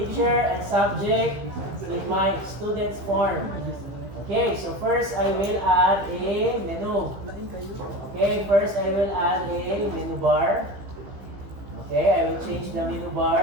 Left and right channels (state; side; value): late; left; 15 ms